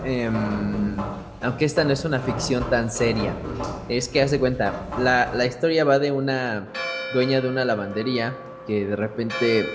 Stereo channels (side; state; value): both; identical; correlation 1.00